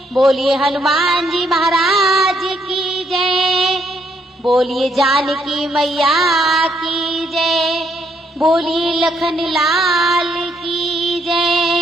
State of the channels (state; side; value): normal; both; correlation 0.73